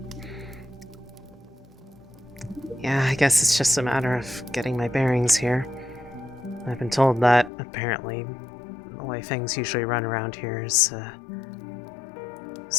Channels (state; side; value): drops out; right; at 7.5 s